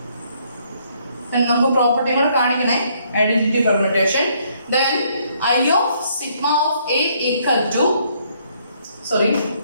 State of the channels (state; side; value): inverted; both; correlation -0.68